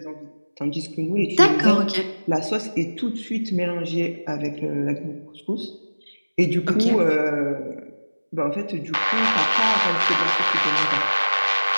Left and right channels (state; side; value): inverted; both; correlation -1.00